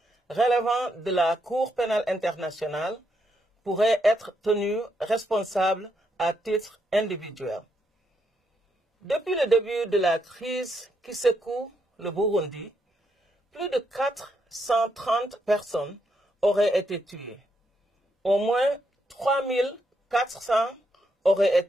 relevant de la Cour pénale internationale pourrait être tenue responsable à titre individuel. Depuis le début de la crise qui secoue le Burundi, plus de 430 personnes auraient été tuées. Au moins 3400 auraient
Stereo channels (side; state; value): both; normal; correlation 0.79